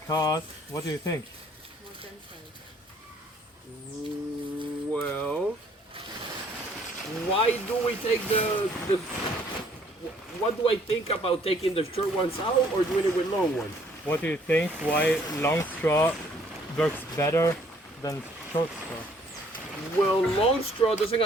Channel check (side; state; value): both; normal; correlation 0.62